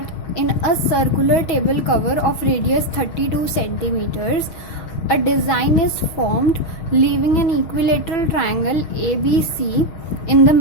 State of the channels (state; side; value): late; right; 6.4 ms